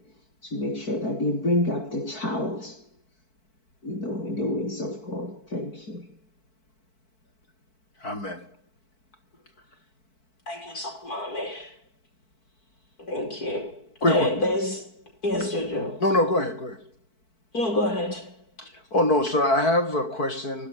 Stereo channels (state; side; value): late; right; 4.5 ms